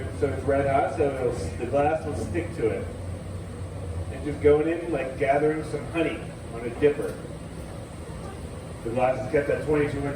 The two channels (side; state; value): both; identical; correlation 1.00